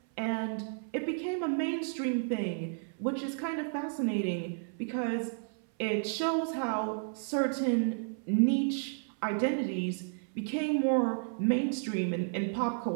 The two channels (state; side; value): silent; left; 56 dB below the other